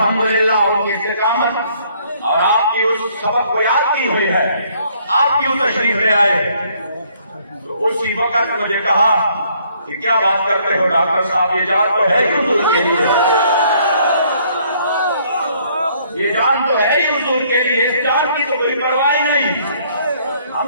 ان کی استقامت اور آپ کی اس سبق کو یاد کی ہوئی ہے. آپ کیوں تشریف لے آئے؟ تو اسی وقت مجھے کہا کہ کیا بات کرتے ہو ڈاکٹر صاحب, یہ جان تو ہے ہی حضور کے لیے, یہ جان تو ہے ہی حضور کے لیے, اس جان کی تو کوئی پرواہ نہیں. ہم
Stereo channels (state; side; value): inverted; both; correlation -0.64